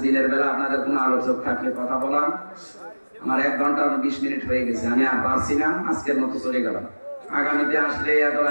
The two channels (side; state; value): both; inverted; correlation -1.00